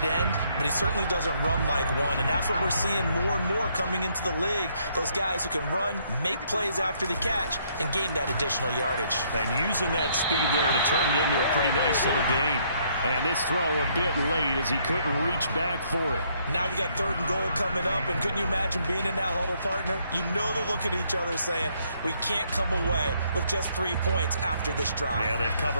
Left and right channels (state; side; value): inverted; both; correlation -0.69